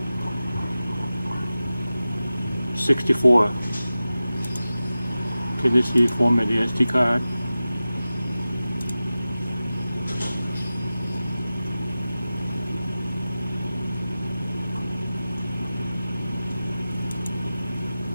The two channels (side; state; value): both; inverted; correlation -0.95